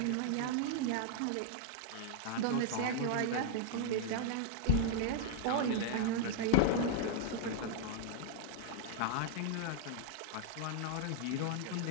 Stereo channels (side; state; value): both; different; correlation 0.00